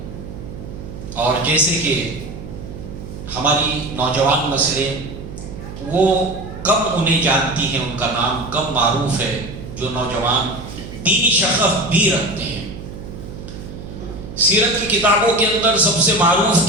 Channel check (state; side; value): noise; right; hum, 11 dB below the sound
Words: اور جیسے کہ ہماری نوجوان نسلیں وہ کم انہیں جانتی ہیں، ان کا نام کم معروف ہے، جو نوجوان دینی شغف بھی رکھتے ہیں. سیرت کی کتابوں کے اندر سب سے معروف